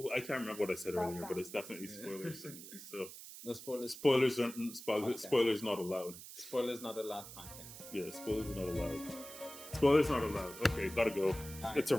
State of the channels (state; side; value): noise; right; hiss, 13 dB below the sound